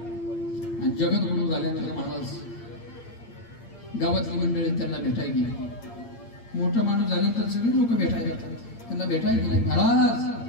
आणि जगद्गुरु झाल्यानंतर महाराज गावातली मंडळी त्यांना भेटायला गेली. मोठा माणूस झाल्यानंतर सगळे लोक भेटायला येतात. त्यांना भेटायला गेले.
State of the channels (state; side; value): late; right; 8.7 ms